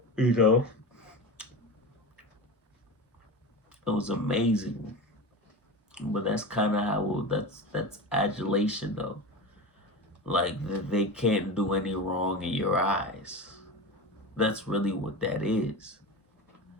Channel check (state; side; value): normal; both; correlation 0.26